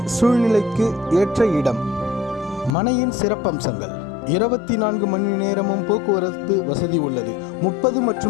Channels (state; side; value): drops out; right; at 2.8 s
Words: சூழ்நிலைக்கு ஏற்ற இடம். மனையின் சிறப்பம்சங்கள்: 24 மணி நேரமும் போக்குவரத்து வசதி உள்ளது. 30